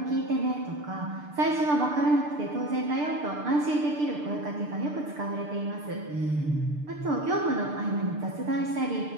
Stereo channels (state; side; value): late; left; 6.7 ms